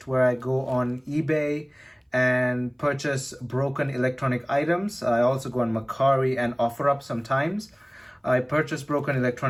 where I go on eBay and purchase broken electronic items. I also go on Mercari and OfferUp sometimes. I purchase broken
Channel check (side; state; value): both; identical; correlation 1.00